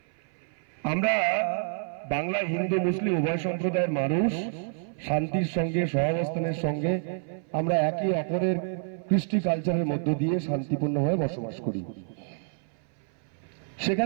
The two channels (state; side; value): silent; left; 57 dB below the other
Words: আমরা বাংলা হিন্দু মুসলিম উভয় সম্প্রদায়ের মানুষ শান্তির সঙ্গে সহাবস্থানের সঙ্গে আমরা একে অপরের কৃষ্টি কালচারের মধ্য দিয়ে শান্তিপূর্ণভাবে বসবাস করি।